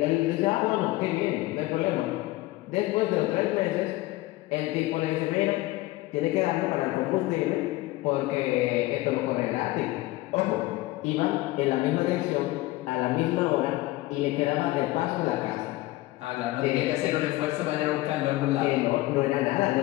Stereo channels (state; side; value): quieter; right; 18.7 dB